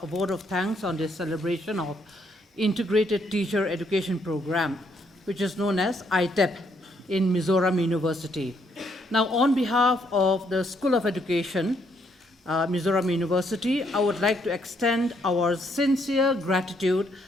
a vote of thanks on this celebration of Integrated Teacher Education Program, which is known as ITEP in Mizoram University. Now, on behalf of the School of Education, Mizoram University, I would like to extend our sincere gratitude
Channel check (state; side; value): normal; both; correlation 0.71